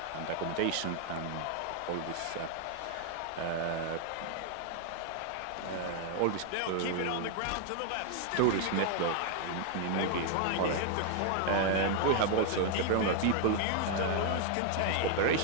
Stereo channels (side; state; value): both; different; correlation 0.00